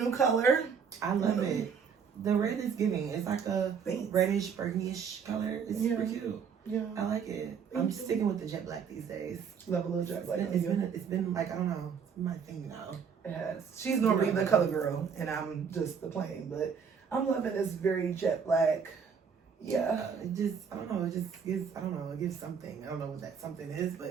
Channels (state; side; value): quieter; left; 6.6 dB